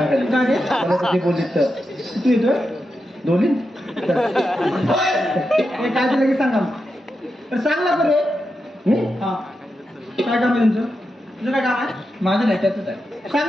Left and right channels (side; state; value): both; normal; correlation 0.88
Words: काय ते? मला तुझे बोलीत तर तू येतोय दोन्ही हे काय ते लगेच सांगा. तर सांग ना रे. हा काय काम आहे तुमचं. तुझं काय काम आहे. माझं नाही त्याच आहे सांग